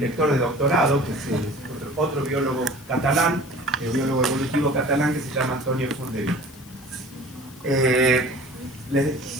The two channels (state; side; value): noise; left; hiss, 22 dB below the sound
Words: de doctorado, que es otro biólogo catalán, biólogo evolutivo catalán, que se llama Antonio Fondevila.